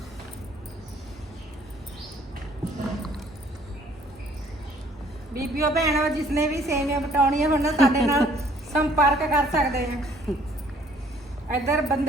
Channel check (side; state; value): both; normal; correlation 0.59